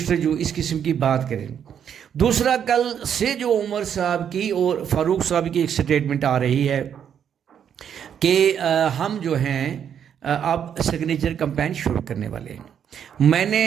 جو اس قسم کی بات کریں. دوسرا، کل سے جو عمر صاحب کی اور فاروق صاحب کی ایک سٹیٹمنٹ آ رہی ہے کہ ہم جو ہیں اب سگنیچر کمپین شروع کرنے والے ہیں. میں نے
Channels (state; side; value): quieter; left; 8.5 dB